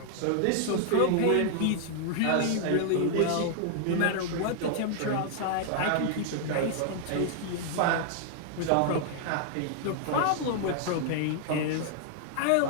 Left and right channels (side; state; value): both; different; correlation -0.01